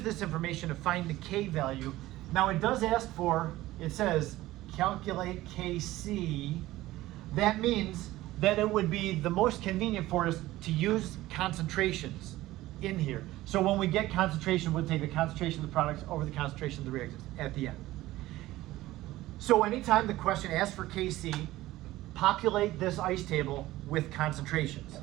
this information to find the K value. Now it does ask for, it says, calculate Kc. That means that it would be the most convenient for us to use concentrations in here. So when we get concentration, we'll take the concentration of the products over the concentration of the reactants at the end. So anytime the question asks for Kc, populate this ice table with concentrations.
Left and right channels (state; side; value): quieter; left; 16.7 dB